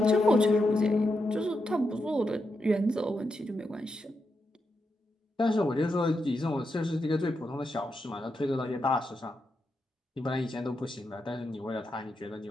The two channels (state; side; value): normal; both; correlation 0.85